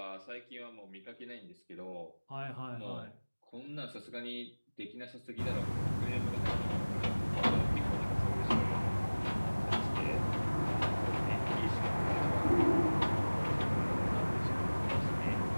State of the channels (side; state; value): both; inverted; correlation -1.00